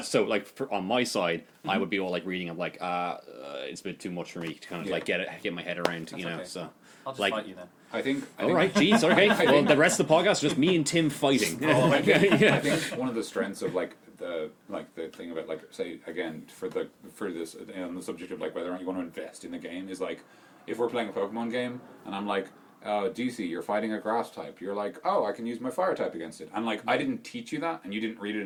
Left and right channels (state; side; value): identical; both; correlation 1.00